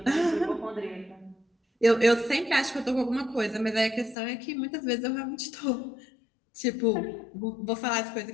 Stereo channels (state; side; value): drops out; right; at 4.2 s